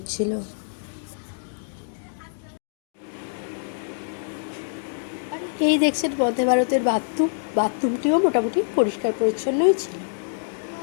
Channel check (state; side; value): silent; right; digital silence